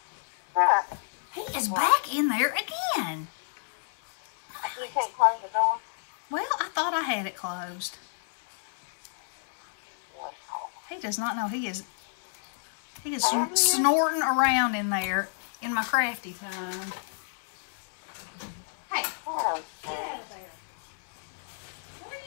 Right. He is back in there again. You can't close the door? Well, I thought I had it closed. He does not know. He is snorting around in there in my crafty time. Hey, get out of there. What are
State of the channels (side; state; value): right; silent; digital silence